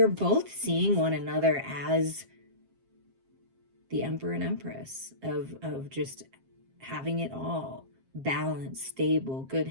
both seeing one another as the Emperor and Empress of just having it all. Balance, stable, good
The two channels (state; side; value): late; left; 7.5 ms